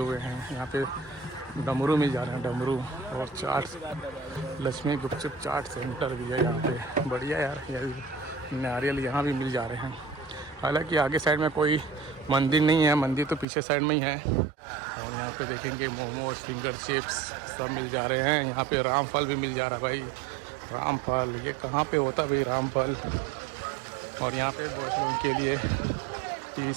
हैं। यहाँ पे डमरू मिल जा रहे हैं, डमरू। और चाट, लक्ष्मी गुपचुप चाट सेंटर भी है यहाँ पे, बढ़िया यार। नारियल यहाँ भी मिल जा रहे हैं। हालांकि आगे साइड में कोई मंदिर नहीं है, मंदिर तो पीछे साइड में ही है। और यहाँ पे देखेंगे मोमोज, फिंगर चिप्स सब मिल जा रहे हैं। यहाँ पे रामफल भी मिल जा रहा है भाई, रामफल। ये कहाँ पे होता है भाई रामफल। और यहाँ पे बॉयज लोगों के लिए T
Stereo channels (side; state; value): left; drops out; at 13.5 s